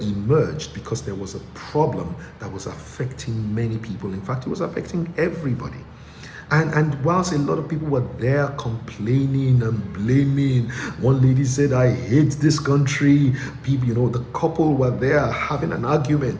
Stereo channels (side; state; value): both; identical; correlation 1.00